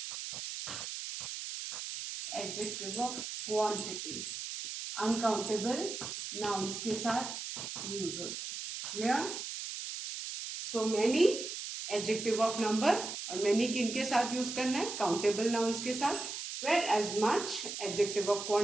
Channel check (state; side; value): noise; right; hiss, 6 dB below the sound